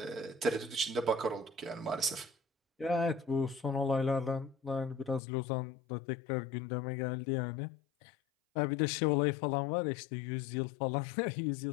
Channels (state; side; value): drops out; right; at 5.2 s